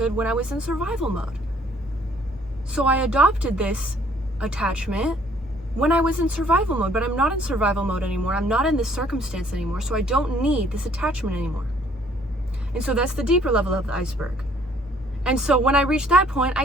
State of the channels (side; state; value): both; normal; correlation 0.61